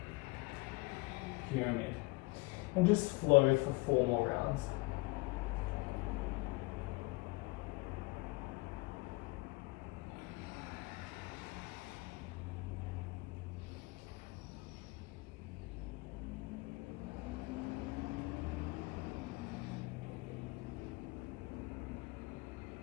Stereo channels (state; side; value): quieter; right; 23.7 dB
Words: Pyramid. And just flow for 4 more rounds.